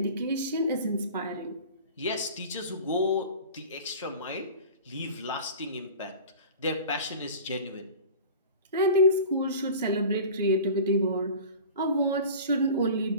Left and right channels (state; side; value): inverted; both; correlation -0.38